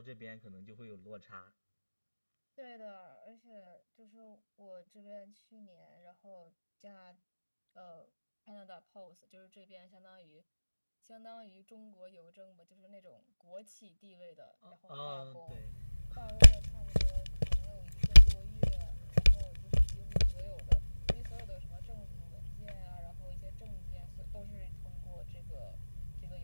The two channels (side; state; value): both; inverted; correlation -1.00